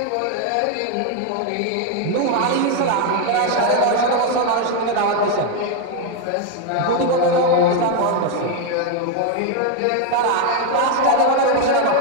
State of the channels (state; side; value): different; both; correlation 0.01